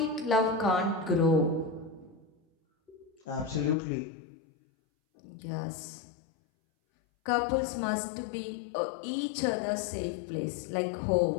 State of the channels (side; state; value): right; drops out; at 3.8 s